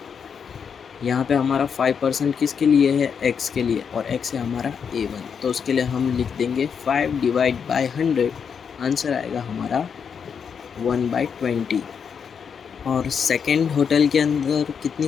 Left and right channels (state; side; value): quieter; right; 6.8 dB